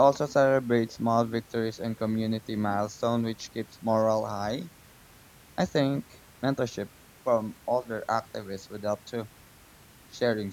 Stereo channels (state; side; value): identical; both; correlation 1.00